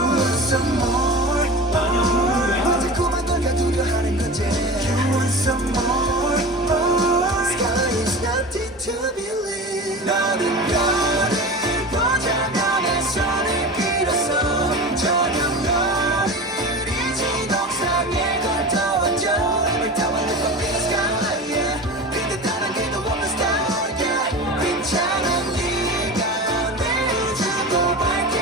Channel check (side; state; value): both; normal; correlation 0.31